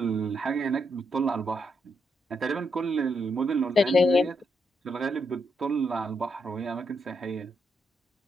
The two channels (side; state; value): both; normal; correlation 0.80